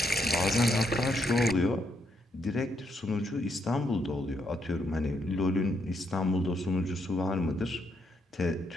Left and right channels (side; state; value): both; normal; correlation 0.77